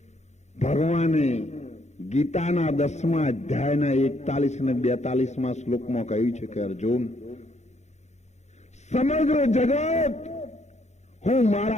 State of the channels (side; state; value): right; late; 0.33 ms